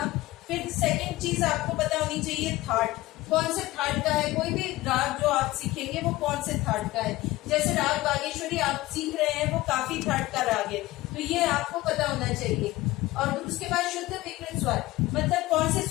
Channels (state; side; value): quieter; right; 18.3 dB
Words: फिर सेकंड चीज आपको पता होनी चाहिए थाट, कौन से थाट का है। कोई भी राग जो आप सीखेंगे वो कौन से थाट का है। जैसे राग बागेश्वरी आप सीख रहे हैं, वो काफी थाट का राग है, तो ये आपको पता होना चाहिए। और उसके बाद शुद्ध विकृत स्वर, मतलब कौन से